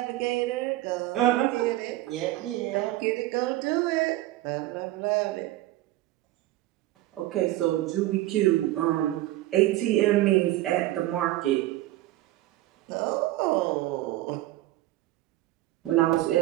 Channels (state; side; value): quieter; left; 16.1 dB